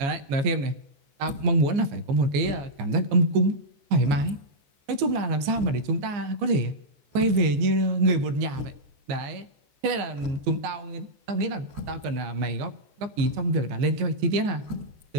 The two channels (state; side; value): late; left; 15 ms